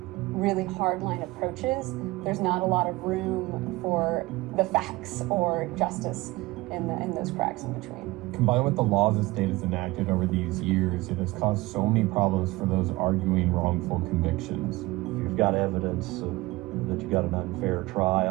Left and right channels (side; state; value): left; quieter; 20.4 dB